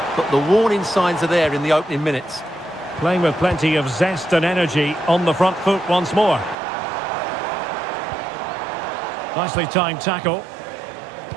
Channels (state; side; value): drops out; left; at 6.6 s